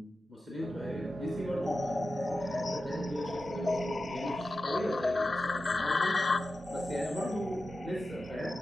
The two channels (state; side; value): normal; both; correlation 0.92